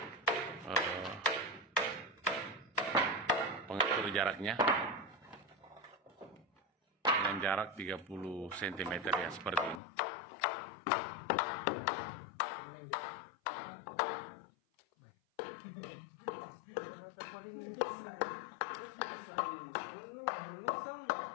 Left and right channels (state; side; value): drops out; right; at 9.8 s